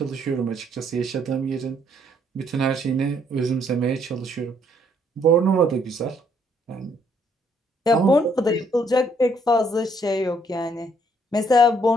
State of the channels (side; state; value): both; normal; correlation 0.68